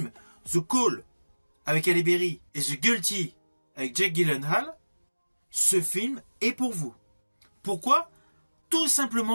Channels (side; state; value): both; inverted; correlation -1.00